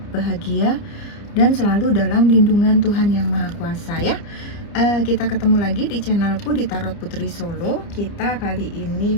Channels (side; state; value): right; late; 29 ms